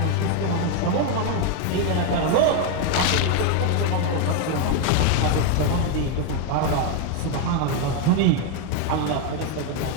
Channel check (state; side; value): different; both; correlation 0.01